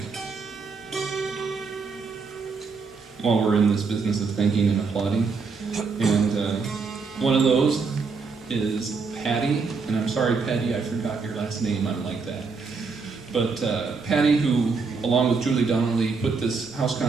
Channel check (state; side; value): quieter; left; 4.7 dB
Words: while we're in this business of thanking and applauding. And one of those is Patty. And I'm sorry, Patty, I forgot your last name. I'm like that. But Patty, who, along with Julie Donnelly, put this house